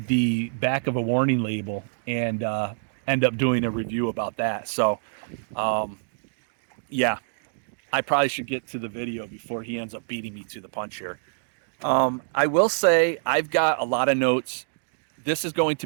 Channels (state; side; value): silent; left; digital silence